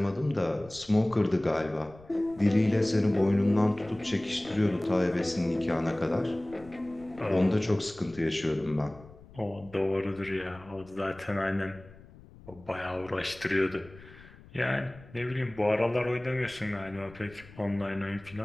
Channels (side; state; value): left; noise; rumble, 21 dB below the sound